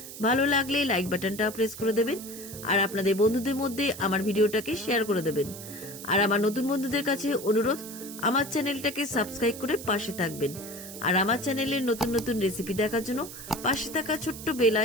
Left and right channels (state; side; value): noise; right; hiss, 12 dB below the sound